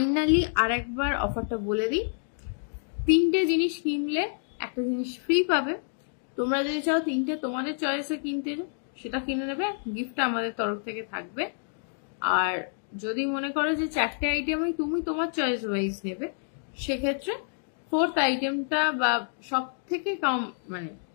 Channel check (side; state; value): right; silent; digital silence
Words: আর একবার অফারটা বলে দিই, 3টে জিনিস কিনলে একটা জিনিস ফ্রি পাবে। তোমরা যদি চাও 3টে তোমাদের চয়েসে কিনতে, সেটা কিনে নেবে, গিফটটা আমাদের তরফ থেকে থাকবে। আর যদি মনে করো যে 4টে আইটেমই তুমি তোমার চয়েস ওয়াইজ নেবে, সেক্ষেত্রে 4th আইটেমটা বা সব থেকে কম মানে